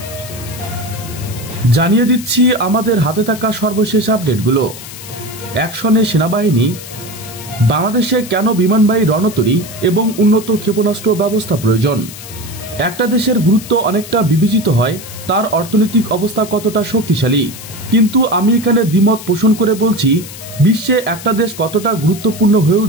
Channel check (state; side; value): noise; left; hiss, 14 dB below the sound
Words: জানিয়ে দিচ্ছি আমাদের হাতে থাকা সর্বশেষ আপডেটগুলো। অ্যাকশনে সেনাবাহিনী, বাংলাদেশে কেন বিমানবাহী রণতরী এবং উন্নত ক্ষেপণাস্ত্র ব্যবস্থা প্রয়োজন। একটা দেশের গুরুত্ব অনেকটা বিবেচিত হয় তার অর্থনৈতিক অবস্থা কতটা শক্তিশালী, কিন্তু আমি এখানে দ্বিমত পোষণ করে বলছি, বিশ্বে একটা দেশ কতটা গুরুত্বপূর্ণ হয়ে